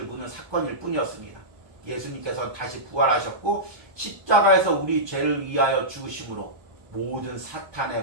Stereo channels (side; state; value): left; late; 1.2 ms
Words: 무는 사건일 뿐이었습니다. 예수님께서는 다시 부활하셨고 십자가에서 우리 죄를 위하여 죽으심으로 모든